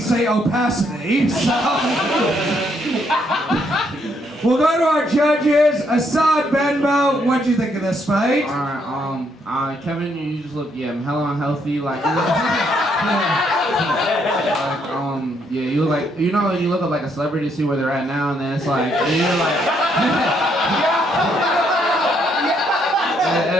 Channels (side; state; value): both; normal; correlation 0.73